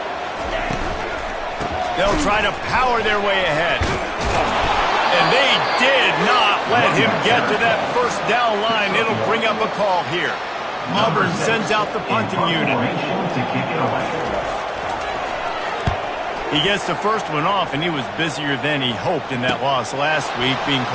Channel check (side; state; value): both; identical; correlation 1.00